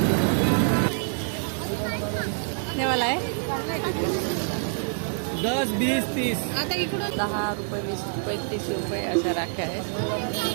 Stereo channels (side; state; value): left; silent; 61 dB below the other